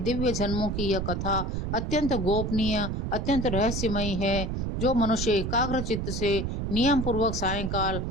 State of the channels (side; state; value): right; noise; rumble, 2 dB below the sound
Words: जन्मों की यह कथा अत्यंत गोपनीय, अत्यंत रहस्यमयी है। जो मनुष्य एकाग्र चित्त से नियम पूर्वक सायंकाल